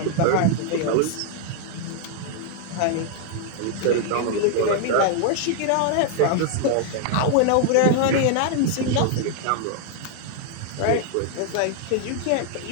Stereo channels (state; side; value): different; both; correlation 0.00